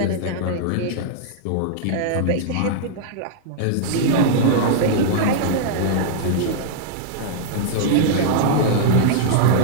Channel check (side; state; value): both; different; correlation -0.01